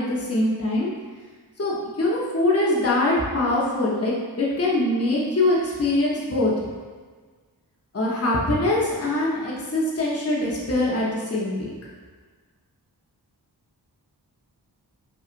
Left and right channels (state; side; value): normal; both; correlation 0.28